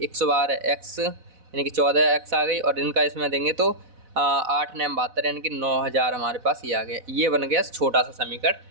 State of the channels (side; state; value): left; late; 4.0 ms